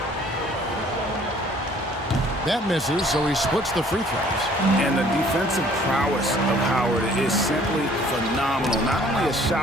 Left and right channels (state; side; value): normal; both; correlation 0.56